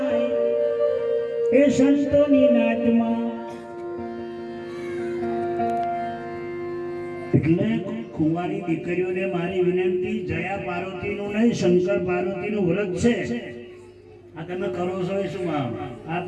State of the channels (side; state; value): both; identical; correlation 1.00